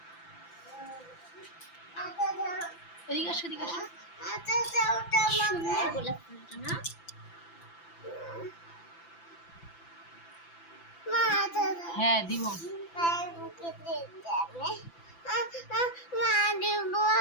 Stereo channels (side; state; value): right; late; 5.9 ms